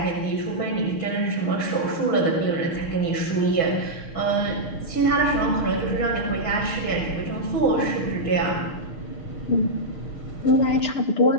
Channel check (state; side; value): late; right; 6.1 ms